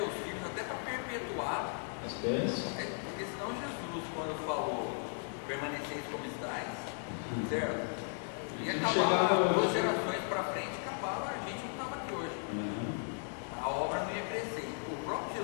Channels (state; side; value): silent; right; 54 dB below the other